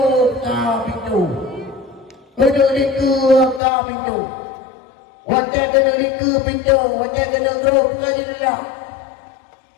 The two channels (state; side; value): drops out; right; at 3.6 s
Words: pintu kena liku pintu wajah kena liku pintu wajah kena grup jendela